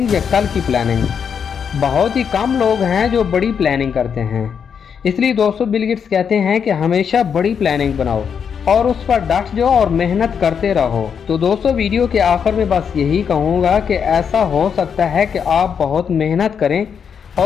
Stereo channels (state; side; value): quieter; right; 7.1 dB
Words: या कल की प्लानिंग। बहुत ही कम लोग हैं जो बड़ी प्लानिंग करते हैं। इसलिए दोस्तों बिल गेट्स कहते हैं कि हमेशा बड़ी प्लानिंग बनाओ और उस पर डट जाओ और मेहनत करते रहो। तो दोस्तों वीडियो के आखिर में बस यही कहूँगा कि ऐसा हो सकता है कि आप बहुत मेहनत करें